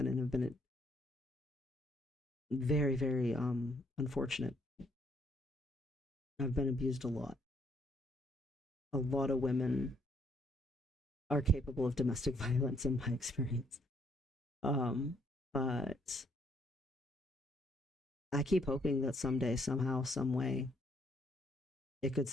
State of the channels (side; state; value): both; normal; correlation 0.69